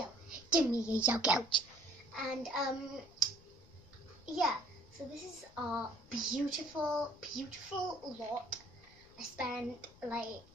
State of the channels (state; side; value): noise; left; rumble, 24 dB below the sound